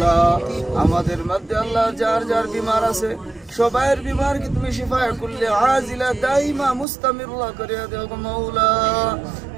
আমাদের মধ্যে আল্লাহ যার যার বিমার আছে সবাইয়ের বিমারকে তুমি শিফায়ে কুল্লি আজিলা দাইমা মুস্তামিররা করিয়া দাও গো মাওলা।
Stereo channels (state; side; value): drops out; left; at 6.9 s